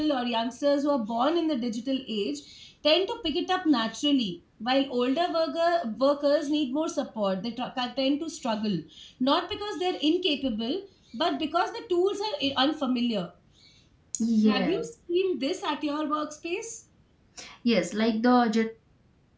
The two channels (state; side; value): identical; both; correlation 1.00